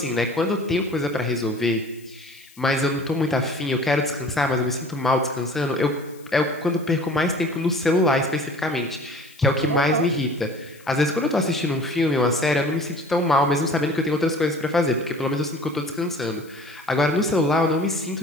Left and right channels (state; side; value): noise; left; hiss, 25 dB below the sound